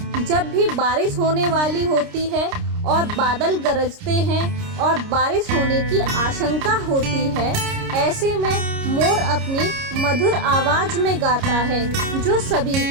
जब भी बारिश होने वाली होती है और बादल गरजते हैं और बारिश होने की आशंका होती है, ऐसे में मोर अपनी मधुर आवाज में गाता है जो सभी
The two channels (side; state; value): left; late; 29 ms